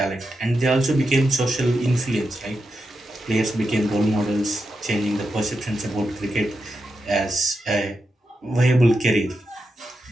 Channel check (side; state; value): both; normal; correlation 0.87